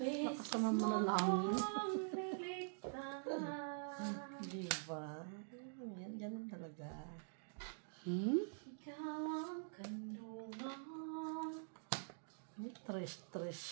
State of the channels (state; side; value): silent; left; digital silence